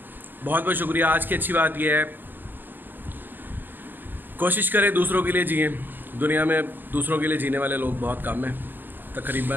बहुत बहुत शुक्रिया। आज की अच्छी बात यह है, कोशिश करें दूसरों के लिए जिए। दुनिया में दूसरों के लिए जीने वाले लोग बहुत कम हैं।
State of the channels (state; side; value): late; left; 0.092 ms